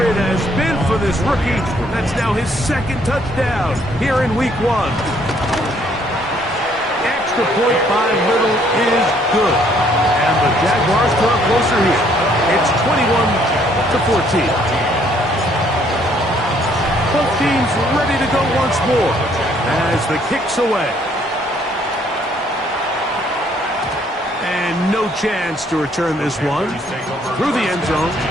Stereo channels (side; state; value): both; normal; correlation 0.65